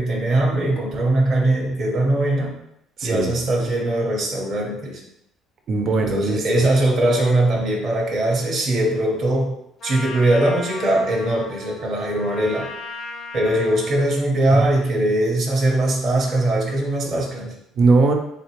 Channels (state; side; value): normal; both; correlation 0.81